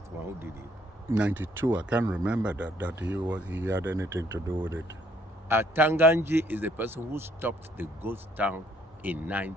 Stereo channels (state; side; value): normal; both; correlation 0.65